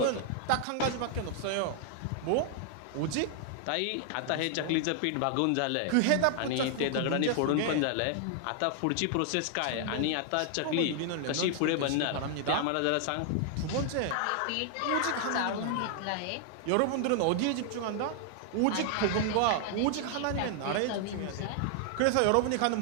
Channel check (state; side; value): different; both; correlation 0.00